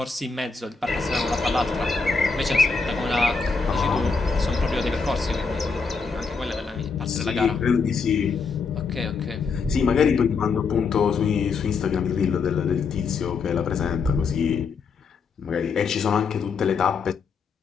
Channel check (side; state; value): right; quieter; 4.9 dB